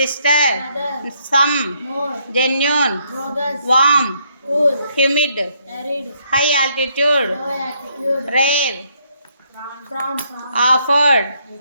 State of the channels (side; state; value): both; inverted; correlation -0.72